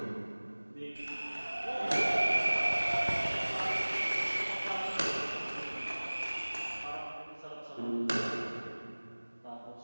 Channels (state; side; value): inverted; both; correlation -1.00